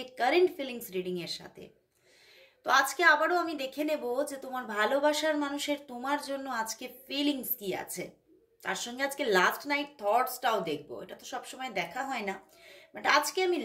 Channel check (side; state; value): both; identical; correlation 1.00